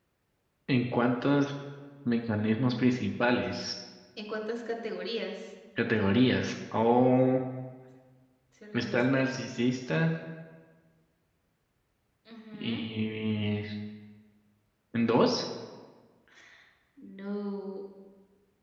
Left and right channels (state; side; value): identical; both; correlation 1.00